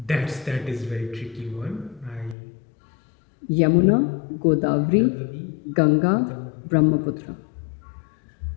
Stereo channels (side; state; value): right; drops out; at 2.4 s